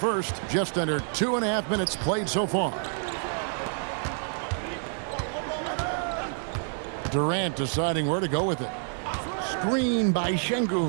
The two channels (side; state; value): left; silent; 56 dB below the other